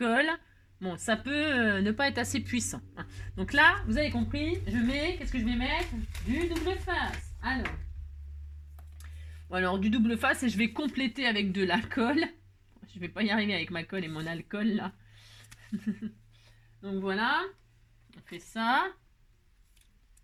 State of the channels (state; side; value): identical; both; correlation 1.00